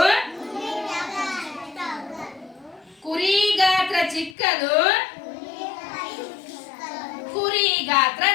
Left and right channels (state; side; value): drops out; right; at 4.4 s